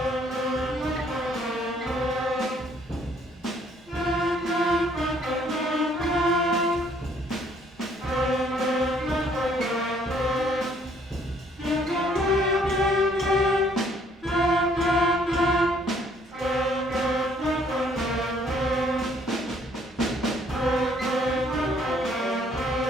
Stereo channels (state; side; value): normal; both; correlation 0.63